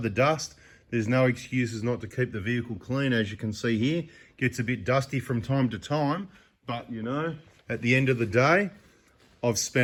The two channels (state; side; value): identical; both; correlation 1.00